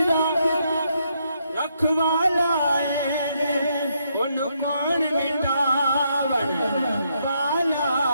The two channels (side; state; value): both; inverted; correlation -0.76